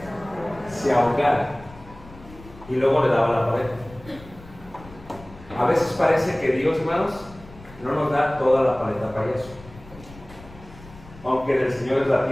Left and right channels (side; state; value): left; noise; rumble, 20 dB below the sound